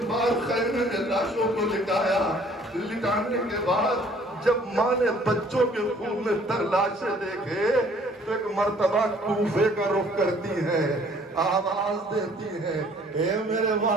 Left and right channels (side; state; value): both; normal; correlation 0.57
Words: بار خیمے نے لاشوں کو لٹایا۔ لٹانے کے بعد جب ماں نے بچوں کے خون میں تر لاشیں دیکھے تو ایک مرتبہ کوفے کا رخ کرتی ہے، آواز دیتی ہے، اے میرے